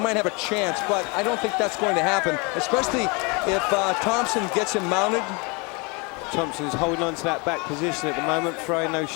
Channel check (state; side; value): quieter; right; 29.9 dB